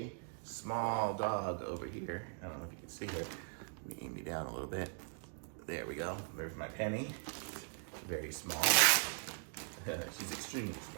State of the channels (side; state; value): left; silent; 51 dB below the other